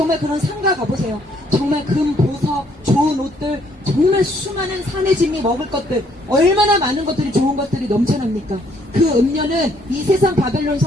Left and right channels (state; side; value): normal; both; correlation 0.67